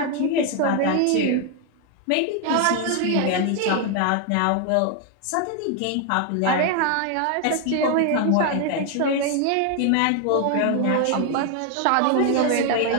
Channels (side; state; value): both; different; correlation 0.00